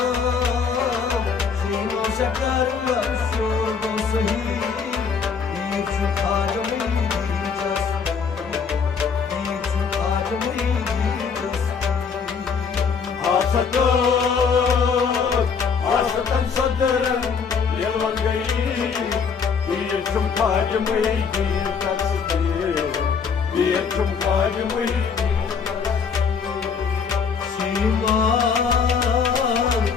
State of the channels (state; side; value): quieter; right; 5.9 dB